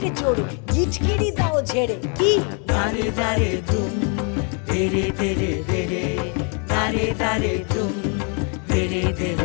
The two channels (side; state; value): right; quieter; 38.4 dB